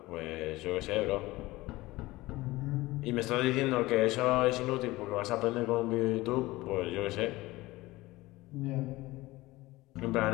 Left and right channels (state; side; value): quieter; right; 19.4 dB